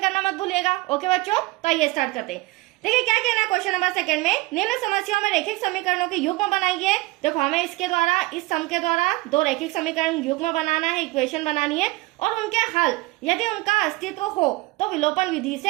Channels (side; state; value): left; quieter; 21.1 dB